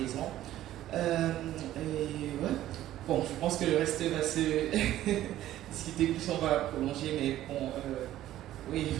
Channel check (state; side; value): quieter; left; 13.5 dB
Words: Ouais. Bon, je pense que le reste va se discuter plus, on va prolonger, mais bon, oui,